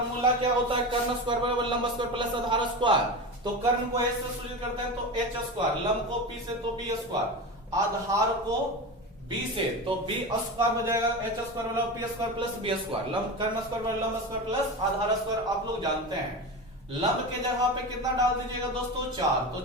क्या होता है, कर्ण स्क्वायर बराबर लंब स्क्वायर प्लस आधार स्क्वायर। तो कर्ण को एच से सूचित करते हैं तो एच स्क्वायर, लंब को पी से तो बी स्क्वायर, आधार को बी से, तो बी स्क्वायर हो जाएगा एच स्क्वायर वाला P square plus B square, लंब कर्ण स्क्वायर वाला लंब स्क्वायर प्लस आधार स्क्वायर। आप लोग जानते हैं लंब के जगह पे कितना डाल दीजिएगा दोस्तों 4, तो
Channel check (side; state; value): both; normal; correlation 0.25